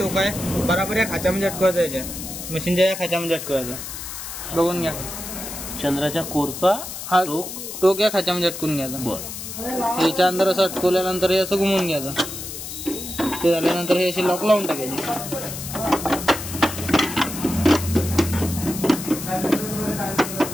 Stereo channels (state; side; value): noise; left; hiss, 8 dB below the sound